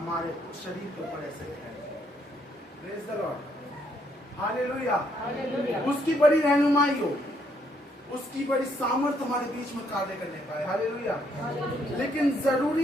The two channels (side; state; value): both; normal; correlation 0.72